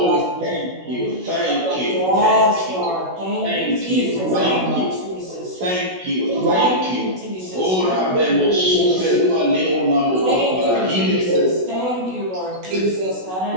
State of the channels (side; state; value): left; late; 16 ms